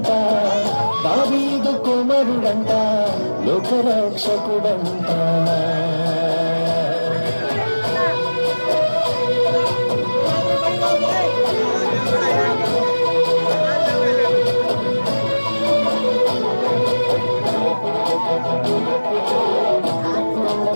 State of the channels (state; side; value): inverted; both; correlation -1.00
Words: దావీదు కుమారుడంట, లోకరక్షకుడంట.